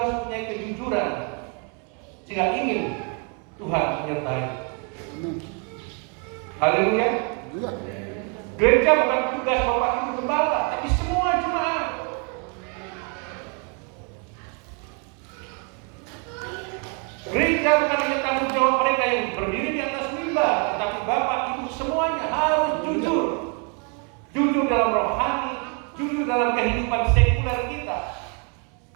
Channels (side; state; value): left; quieter; 37.4 dB